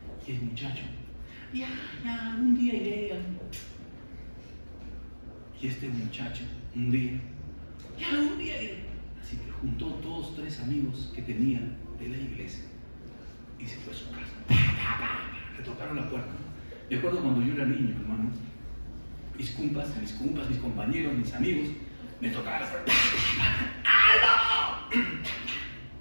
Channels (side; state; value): both; inverted; correlation -1.00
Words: Y el muchacho, ya, un día iré. Y este muchacho, un día iré. Así que juntó 2 o 3 amigos que tenía de la iglesia y se fue a su casa. Le tocaron la puerta. Me acuerdo cuando yo era niño, hermano. Mis compas, mis compañeros, mis amigos, me tocaban la puerta. ¡Aló!